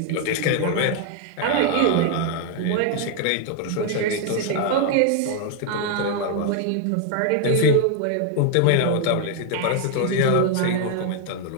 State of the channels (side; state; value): both; different; correlation 0.00